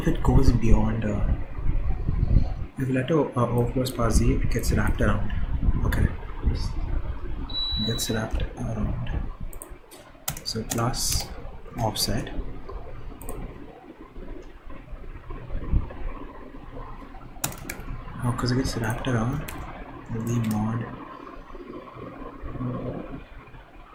it goes beyond if letter O plus par Z, it gets wrapped around. Okay, it gets wrapped around. So plus offset because it gets wrapped around the mod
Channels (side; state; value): both; identical; correlation 1.00